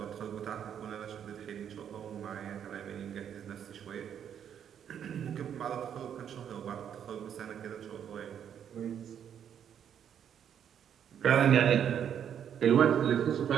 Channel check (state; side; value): quieter; left; 8.9 dB